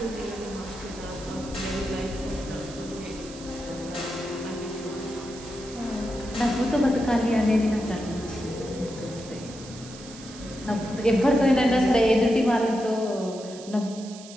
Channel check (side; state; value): right; noise; hiss, 16 dB below the sound